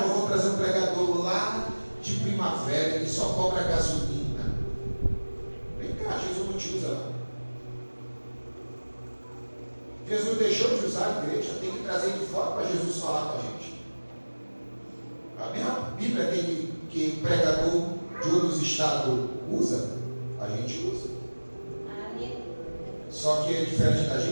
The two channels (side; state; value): both; inverted; correlation -1.00